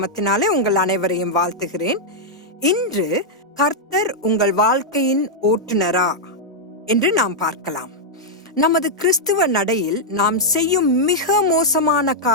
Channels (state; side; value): normal; both; correlation -0.04